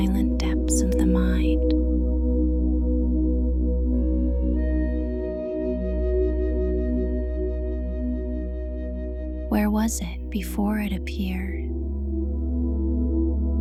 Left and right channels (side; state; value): both; identical; correlation 1.00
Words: depths of the mind? Where was it before it appeared?